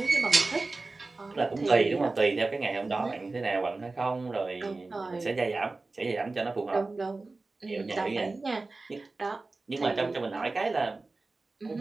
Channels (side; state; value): left; quieter; 3.5 dB